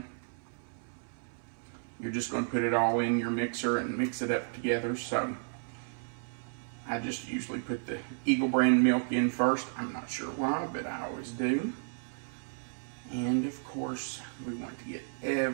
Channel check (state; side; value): silent; left; 56 dB below the other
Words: You're just going to put it all in your mixer and mix it up together. So I just usually put the Eagle brand milk in first. I'm not sure why, but I always do. And of course, we want to get